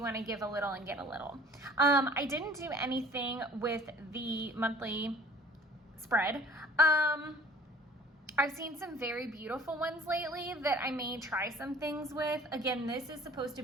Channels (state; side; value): normal; both; correlation 0.50